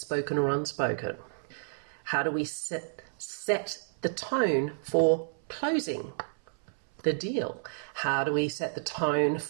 or unspoken? How do we set the tone for closing the deal? How do we set the tone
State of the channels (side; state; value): left; silent; 57 dB below the other